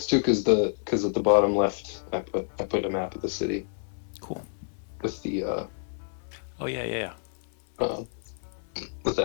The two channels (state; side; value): silent; right; 59 dB below the other